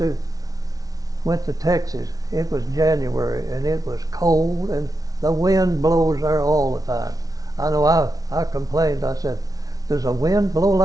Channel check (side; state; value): left; late; 0.18 ms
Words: went to Texas, it was January and it was cold and the wind blows there all the time. I know I complained. I said, does the wind blow